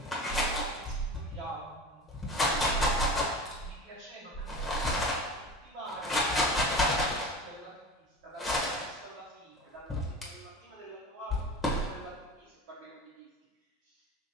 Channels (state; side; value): normal; both; correlation 0.32